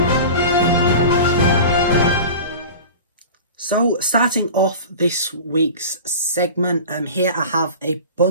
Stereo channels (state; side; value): inverted; both; correlation -0.35